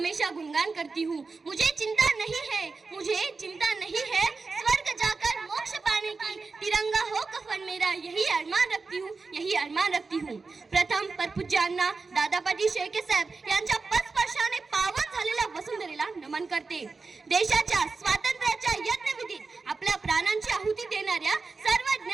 गुणगान करती हूँ। मुझे चिंता नहीं है, मुझे चिंता नहीं है स्वर्ग जाकर मोक्ष पाने की, तिरंगा हो कफन मेरा यही अरमान रखती हूँ, यही अरमान रखती हूँ। प्रथम परपूज्यांना दादापाटी शेळके साहेब यांच्या पदस्पर्शाने पावन झालेल्या वसुंधरेला नमन करते। देशाच्या स्वातंत्र्याच्या यज्ञविधीत आपल्या प्राणांची आहुती देणाऱ्या सर्व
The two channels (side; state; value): left; quieter; 4.2 dB